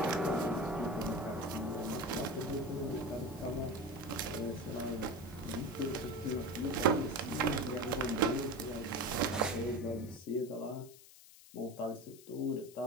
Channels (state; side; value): noise; left; hiss, 20 dB below the sound